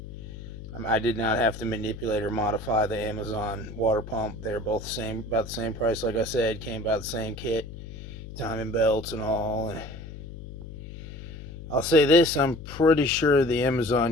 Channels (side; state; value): left; noise; hum, 12 dB below the sound